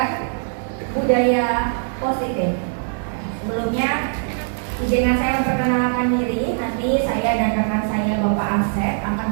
budaya positif. Sebelumnya, izinkan saya memperkenalkan diri. Nanti saya dan rekan saya Bapak Asep akan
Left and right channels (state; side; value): silent; left; digital silence